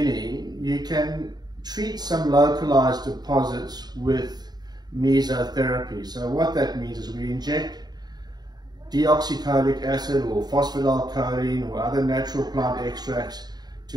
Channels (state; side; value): late; left; 0.20 ms